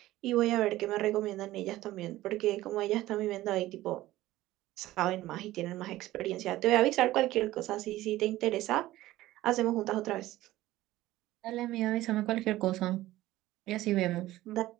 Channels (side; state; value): left; quieter; 16.1 dB